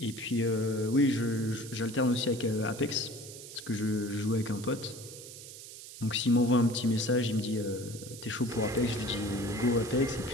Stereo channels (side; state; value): right; noise; hiss, 14 dB below the sound